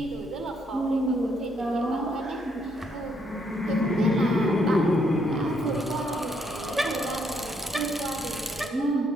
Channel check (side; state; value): both; normal; correlation 0.73